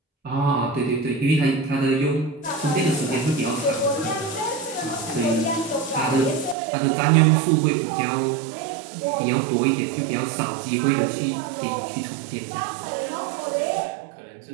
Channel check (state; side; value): drops out; left; at 6.6 s